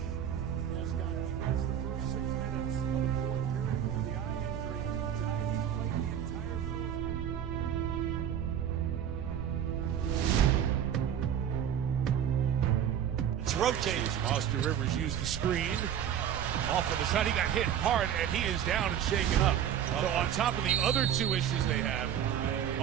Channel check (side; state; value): left; quieter; 9.5 dB